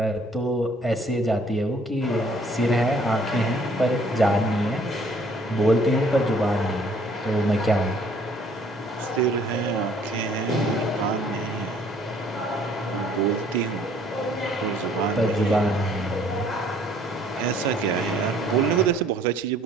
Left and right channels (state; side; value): normal; both; correlation 0.60